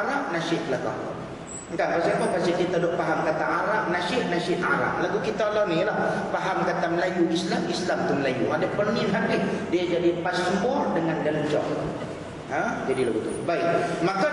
nasyid belakang. Entah pasal apa, pasal kita duk faham kata Arab, nasyid Arab. Lagu kita lah ni lah, faham kata Melayu Islam tu Melayu. Ada penin habis, dia jadi paspor dengan dancah. Jadi lagu tu. Baik, maka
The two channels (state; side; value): identical; both; correlation 1.00